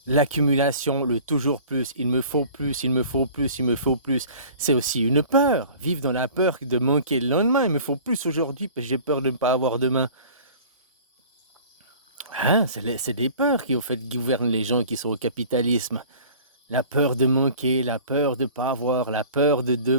L'accumulation, le toujours plus, il me faut plus, il me faut plus, il me faut plus. C'est aussi une peur. Vivre dans la peur de manquer le lendemain. Il me faut plus aujourd'hui parce que j'ai peur de ne pas avoir demain. Hein, c'est des peurs qui, au fait, gouvernent les gens qui sont au capitalisme. La peur de manquer, la peur de pas avoir, la peur de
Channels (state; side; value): inverted; both; correlation -0.45